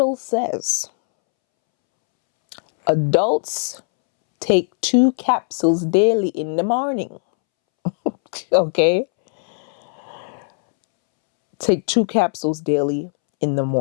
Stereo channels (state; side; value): silent; right; 66 dB below the other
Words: says adults take 2 capsules daily in the morning. Okay? Take 2 capsules daily in the